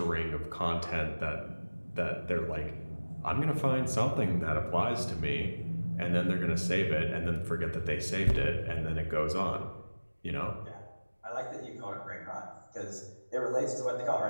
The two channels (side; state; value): both; inverted; correlation -1.00